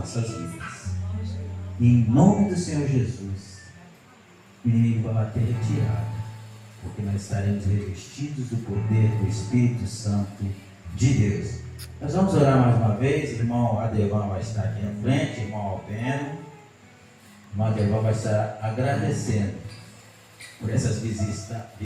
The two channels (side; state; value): both; identical; correlation 1.00